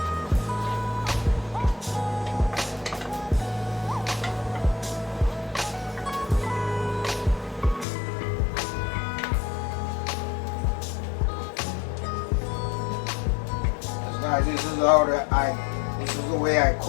Guys, this is the way I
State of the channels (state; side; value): drops out; right; at 7.9 s